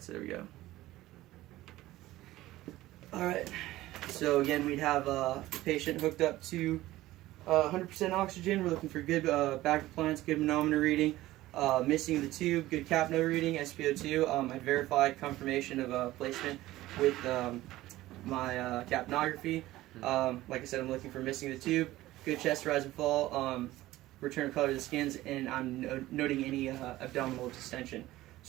so there we go. Alright, so again, we'd have the patient hooked up to 100% oxygen. We're looking for good back compliance, good manometer reading, missing the tube, good capno reading, SpO2. I verified confirmation of placement with my capnography. Like I said, I'm looking for missing the tube, good chest rise and fall, return of color to the skins, and I'm noting any abdominal distension.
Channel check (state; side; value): quieter; left; 16.5 dB